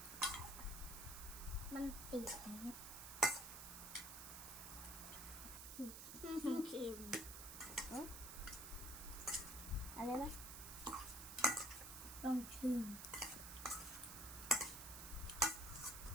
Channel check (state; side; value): noise; right; hiss, 8 dB below the sound